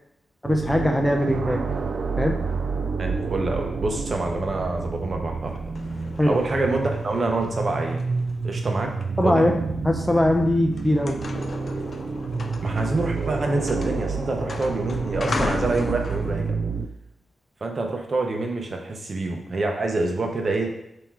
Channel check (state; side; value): normal; both; correlation 0.89